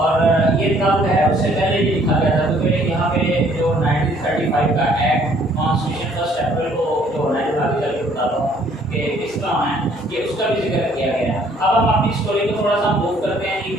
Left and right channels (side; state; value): both; normal; correlation 0.61